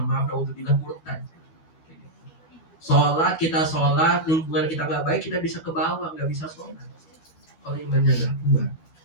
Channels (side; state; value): right; late; 12 ms